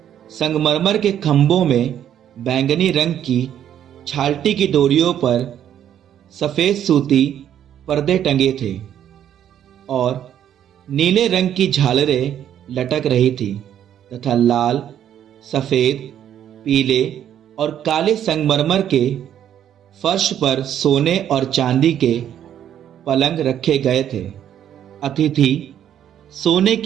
संगमरमर के खंभों में बैंगनी रंग की छालटी की डोरियों पर सफेद सूती पर्दे टंगे थे और नीले रंग की झालरें लटक रही थी तथा लाल, सफेद, पीले और काले संगमरमर के फर्श पर सोने और चांदी के पलंग रखे गए थे। अतिथि सोने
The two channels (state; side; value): quieter; left; 10.2 dB